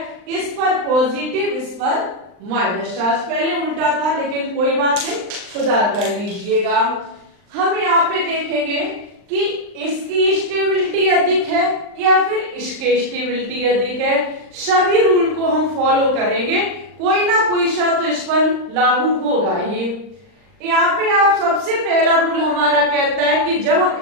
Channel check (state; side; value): late; left; 39 ms